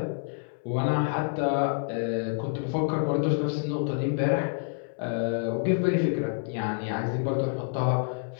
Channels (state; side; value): silent; right; 59 dB below the other